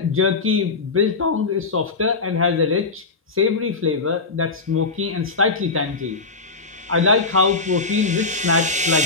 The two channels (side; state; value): right; quieter; 4.0 dB